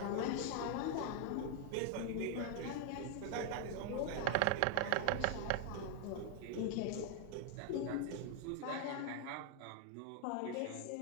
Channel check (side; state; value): both; different; correlation 0.00